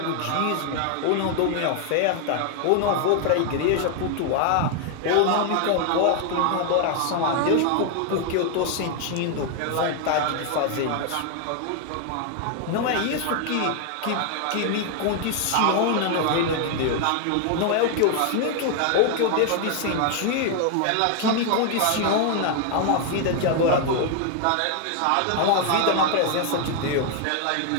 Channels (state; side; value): different; both; correlation 0.00